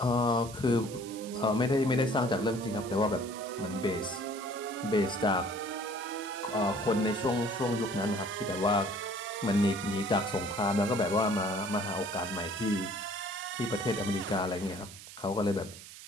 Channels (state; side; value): noise; right; hiss, 15 dB below the sound